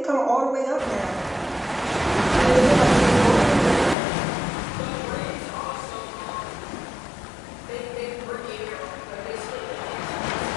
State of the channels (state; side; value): drops out; right; at 4.0 s